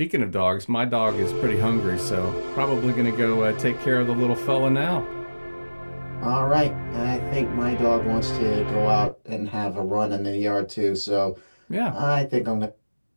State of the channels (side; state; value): both; inverted; correlation -1.00